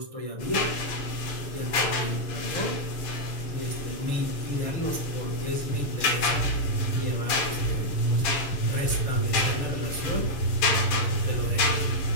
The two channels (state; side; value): late; right; 6.8 ms